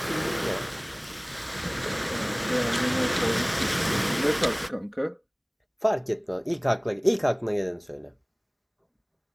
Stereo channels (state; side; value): identical; both; correlation 1.00